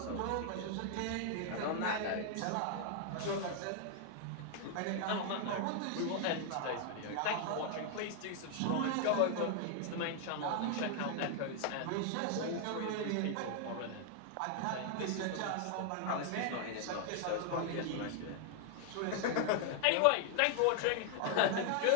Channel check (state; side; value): different; both; correlation 0.00